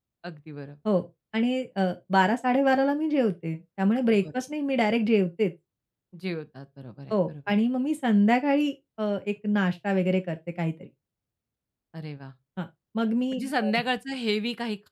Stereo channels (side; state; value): both; identical; correlation 1.00